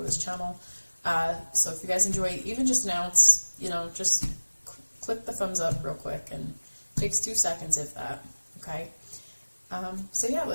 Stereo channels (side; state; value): both; inverted; correlation -1.00